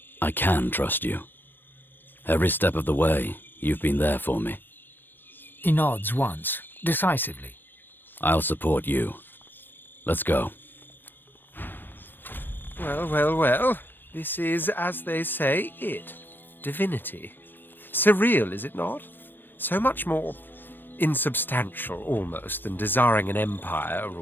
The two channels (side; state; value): right; late; 0.095 ms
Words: I can trust you. Every step of the way, you've been there for me. He nods once, decisively. I'll support you. Let's go. Well, well, well. This is, as they say, it. Divinity. Surreal, is it not? So much more insubstantial, almost, than desiring an empire,